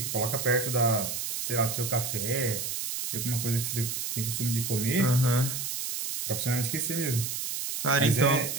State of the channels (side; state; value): right; noise; hiss, 3 dB below the sound